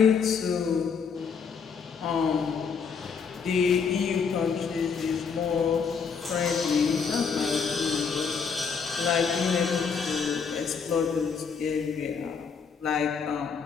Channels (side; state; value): right; quieter; 5.9 dB